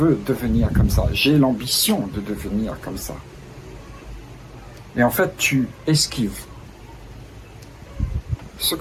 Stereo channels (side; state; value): both; identical; correlation 1.00